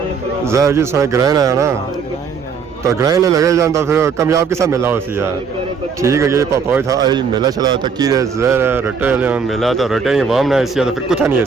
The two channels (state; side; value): quieter; left; 5.7 dB